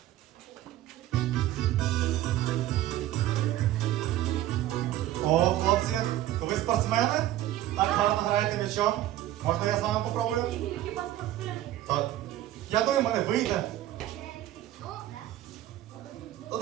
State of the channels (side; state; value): left; quieter; 13.8 dB